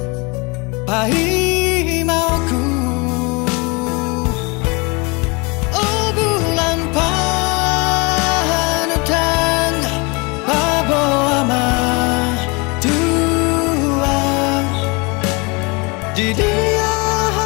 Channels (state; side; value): quieter; right; 28.7 dB